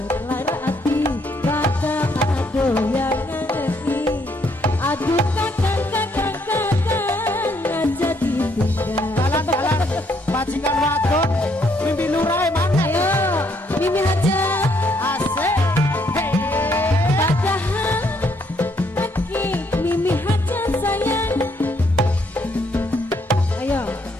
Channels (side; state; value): both; normal; correlation 0.71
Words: Majikan wadon Mimi Lurah mana? Ayo, Mimi aja. Asik. Hey. Padahal lagi Mimi aja sayang. Ayo,